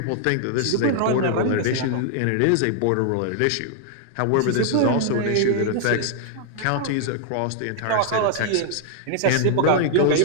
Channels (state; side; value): different; both; correlation 0.00